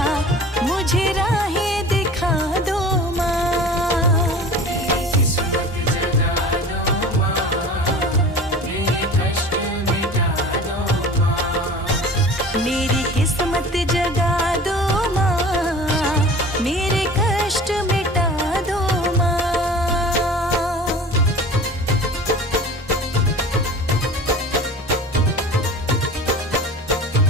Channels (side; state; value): both; normal; correlation 0.40